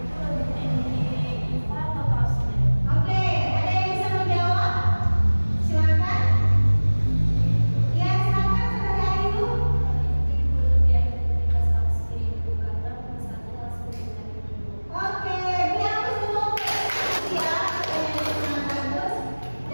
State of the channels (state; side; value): inverted; both; correlation -1.00